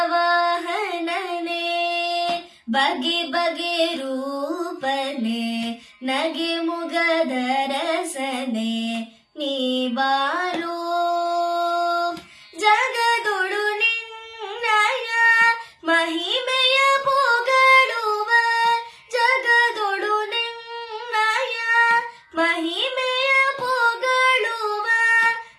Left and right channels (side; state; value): both; identical; correlation 1.00